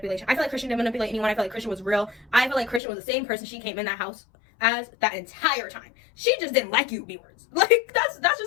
I feel like Christian didn't manipulate anyone. I feel like Christian was real. I feel like Christian was the same person she came in that house as that entire time. She just didn't like you, B-words. Like, that's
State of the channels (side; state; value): right; drops out; at 2.8 s